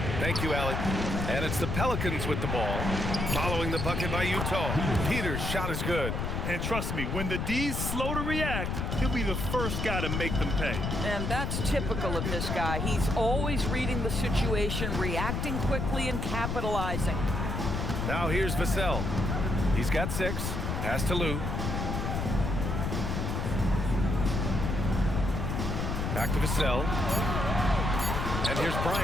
Thank you, Allie. And it's the Pelicans with the ball. Following the bucket by Utah. Peters' shot is good. And trust me, when the D's slow to react, he'll be the first guy to make them pay. And that's typical of this guy. He's always reading the situation, reacting quickly, and capitalizing. Now here's Vassell. He's got 6. Pass to Lou. Back to Vassell. And here's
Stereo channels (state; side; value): noise; left; rumble, 1 dB below the sound